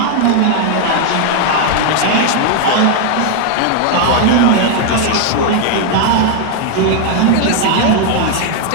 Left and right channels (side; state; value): both; different; correlation 0.00